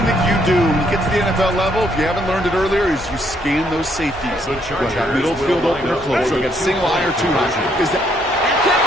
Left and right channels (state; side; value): normal; both; correlation 0.71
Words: that you do when you get to the NFL level, if you haven't learned it earlier, is you scan those safeties. Whether that middle field open or close, so you got single eye or 2 eye. Is that...